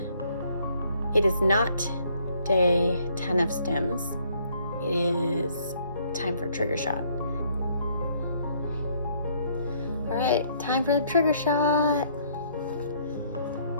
It is not day 10 of STIMS. It is time for trigger shot. All right, time for the trigger shot.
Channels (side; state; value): both; inverted; correlation -0.65